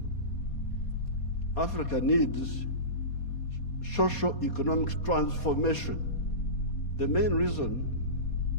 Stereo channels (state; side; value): late; right; 4.2 ms